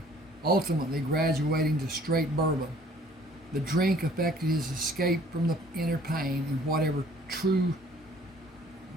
ultimately graduating to straight bourbon. The drink affected his escape from the inner pain and whatever truly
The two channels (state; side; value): normal; both; correlation 0.56